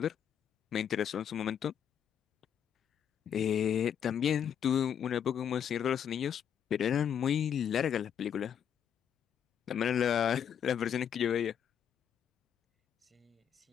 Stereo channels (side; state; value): right; quieter; 8.7 dB